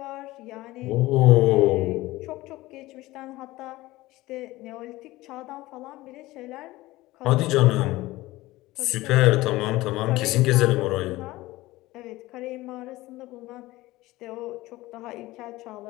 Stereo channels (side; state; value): right; quieter; 18.5 dB